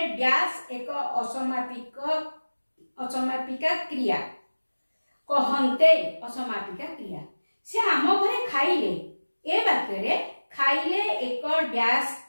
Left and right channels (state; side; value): inverted; both; correlation -1.00